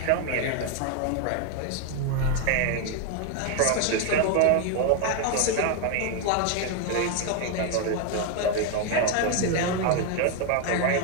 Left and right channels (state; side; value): different; both; correlation 0.01